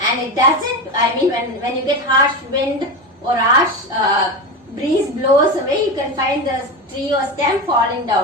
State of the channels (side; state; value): both; normal; correlation 0.20